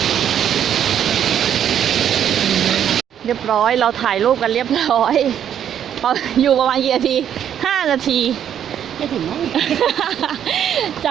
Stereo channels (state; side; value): quieter; left; 9.5 dB